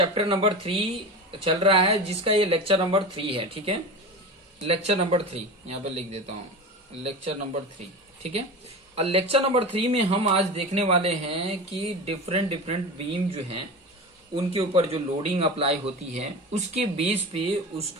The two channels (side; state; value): both; normal; correlation 0.28